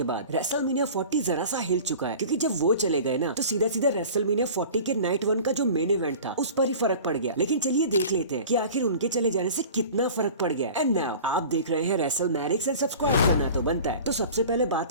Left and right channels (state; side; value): inverted; both; correlation -0.40